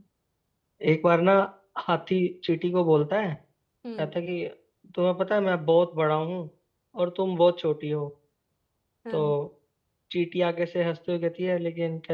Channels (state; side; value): identical; both; correlation 1.00